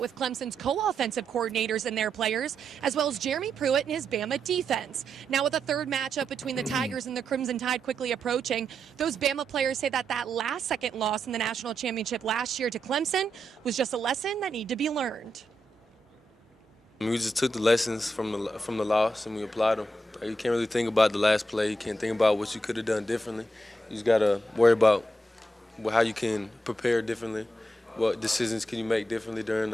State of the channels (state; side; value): normal; both; correlation 0.84